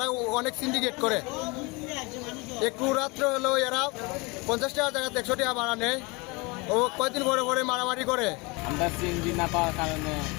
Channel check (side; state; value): right; quieter; 26.7 dB